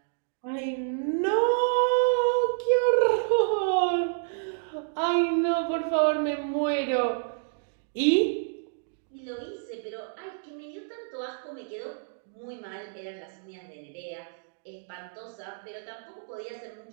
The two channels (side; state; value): left; silent; digital silence